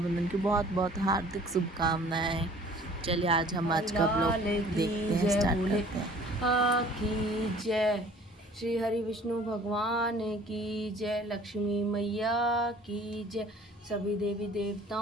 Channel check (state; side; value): normal; both; correlation 0.51